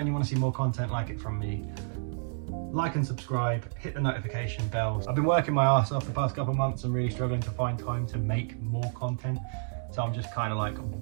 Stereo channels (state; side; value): silent; left; digital silence